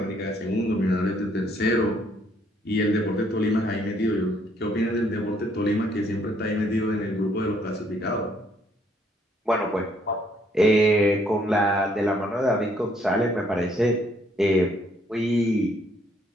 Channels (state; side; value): normal; both; correlation 0.67